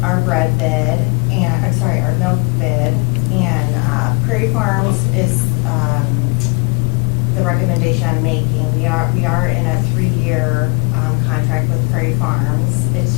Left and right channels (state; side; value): quieter; right; 30.8 dB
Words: our bread bid, and, I'm sorry, our milk bid. And Prairie Farms is the recommendation I'm making. We are in a 3-year contract with Prairie Farms.